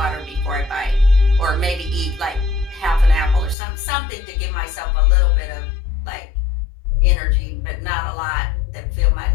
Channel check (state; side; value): drops out; right; at 3.6 s